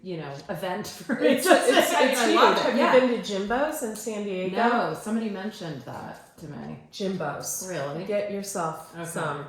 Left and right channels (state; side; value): identical; both; correlation 1.00